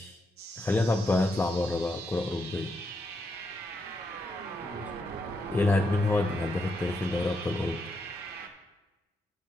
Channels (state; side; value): normal; both; correlation 0.81